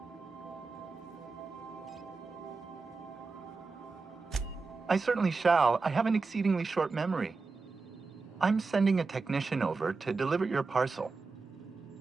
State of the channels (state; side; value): quieter; left; 4.2 dB